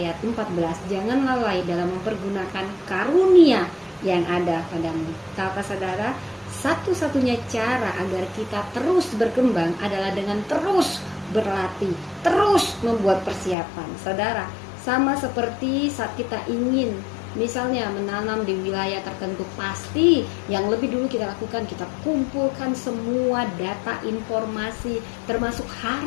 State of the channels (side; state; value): right; drops out; at 13.6 s